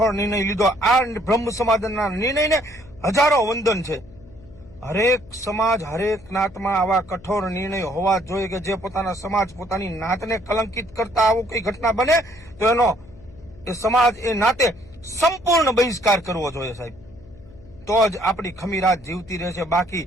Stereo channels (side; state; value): left; noise; hum, 22 dB below the sound